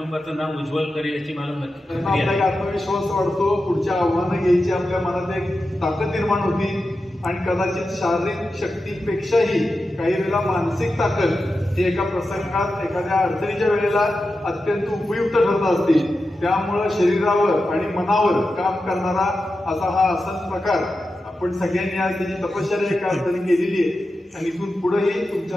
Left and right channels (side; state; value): both; normal; correlation 0.91